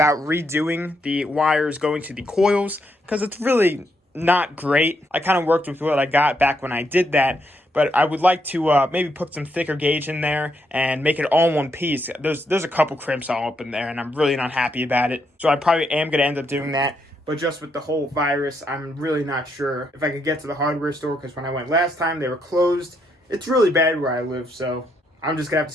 redoing the wires going to the coils, because it's really not great. I kind of worked with what I got back when I did that, but I would like to maybe put some thicker gauge in there and make it all in one piece. There's a couple crimps all up in there, and I'm really not happy about it. So I probably am going to end up doing that. But just with the whole virus, I'm really not sure if I could get to the hardware store, because when I went last time, they were closed. It's really bad where I live, so I'm just going to have to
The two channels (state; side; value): normal; both; correlation 0.77